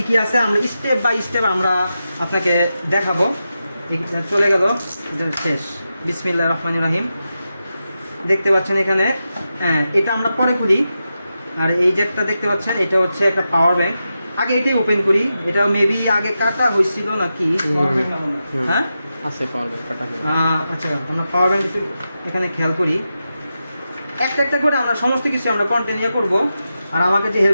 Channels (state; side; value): inverted; both; correlation -0.90